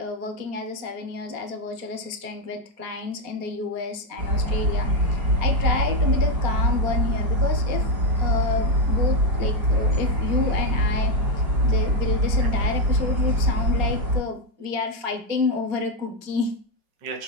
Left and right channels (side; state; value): left; late; 4.3 ms